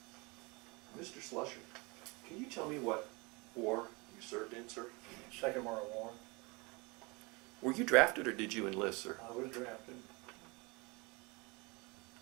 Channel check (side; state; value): left; quieter; 27.3 dB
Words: Mr. Slusser, can you tell me what war you served in, sir? Second World War. Were you drafted or did you enlist, sir? I was drafted.